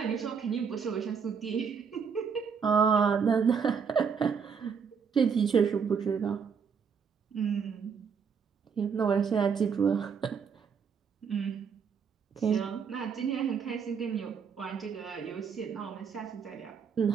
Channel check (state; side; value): quieter; left; 6.4 dB